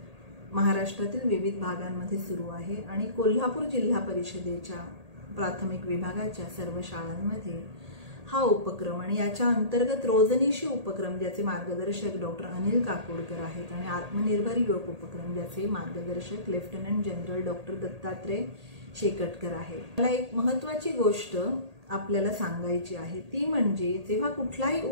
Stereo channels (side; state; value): left; late; 1.8 ms